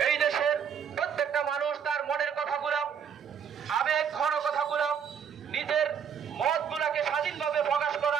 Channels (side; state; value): left; quieter; 7.5 dB